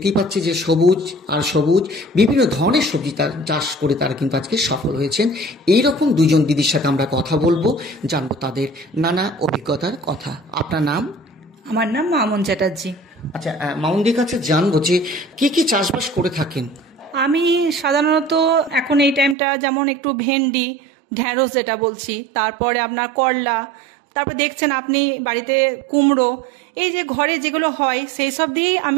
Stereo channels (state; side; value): drops out; left; at 19.4 s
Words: পাচ্ছি যে সবুজ আর সবুজ বিভিন্ন ধরনের সবজি চাষ করে তারা কিন্তু আজকে সফল হয়েছেন। এইরকম দুজন দিদির সাথে আমরা কথা বলবো, জানবো তাদের নানা অভিজ্ঞতার কথা। আপনার নাম? আমার নাম মামুন চ্যাটার্জি। আচ্ছা, মামুনদির কাছে জানবো যে কি কি চাষবাস করে থাকেন। আমি সাধারণত এখন এই টাইমটা যেমন একটু ভেন্ডি, ঢ্যাঁড়স যেটা বলছি, তারপরে আপনার করলা, তারপর দেখছেন আপনি বাড়িতে কুমড়ো, এই যে ঘরে যেগুলো হয় সেই সব দিয়েই